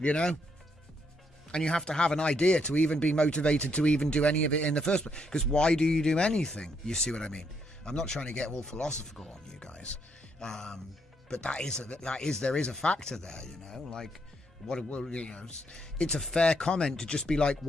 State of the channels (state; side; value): normal; both; correlation 0.74